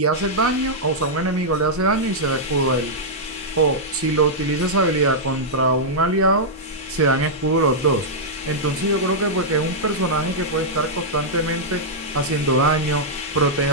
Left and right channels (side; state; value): both; normal; correlation -0.08